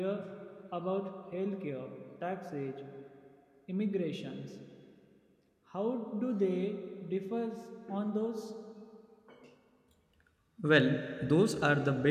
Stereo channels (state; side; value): identical; both; correlation 1.00